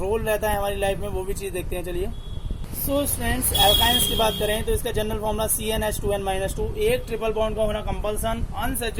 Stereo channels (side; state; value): both; identical; correlation 1.00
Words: रहता है हमारी लाइफ में, वो भी चीज देखते हैं. चलिए सो स्टूडेंट्स एल्काइंस की बात करें तो इसका जनरल फॉर्मूला CnH2n-2. एक ट्रिपल बॉन्ड का होना कंपल्सन.